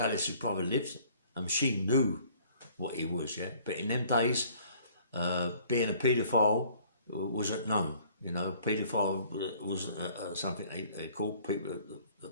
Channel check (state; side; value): inverted; both; correlation -0.56